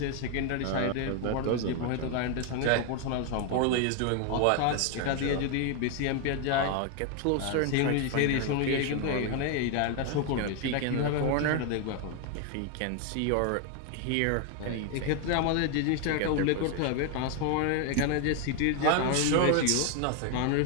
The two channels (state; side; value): different; both; correlation 0.01